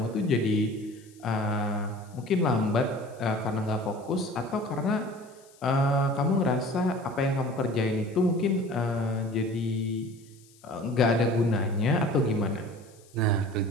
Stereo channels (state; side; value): noise; left; hiss, 28 dB below the sound